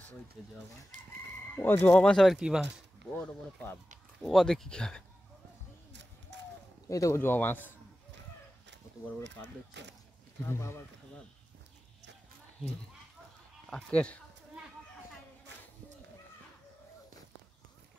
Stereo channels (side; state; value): both; normal; correlation 0.94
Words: ওই তো জবা বাঁশ। ও জবা বাঁশ আবার কি বাঁশ? বড় বড় পাব। ও দেখি কি হবে। এই তো জবা বাঁশ, কত বড় বড় পাব দেখছো? আবার কথা ভাব। আকের